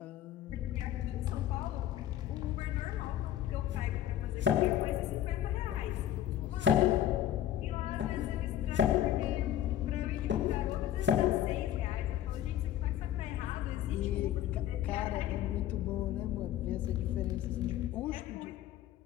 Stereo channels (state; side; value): quieter; right; 11.8 dB